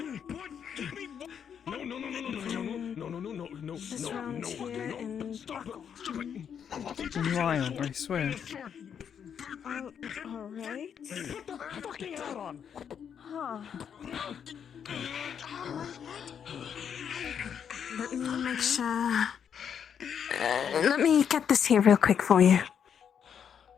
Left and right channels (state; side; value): quieter; right; 7.9 dB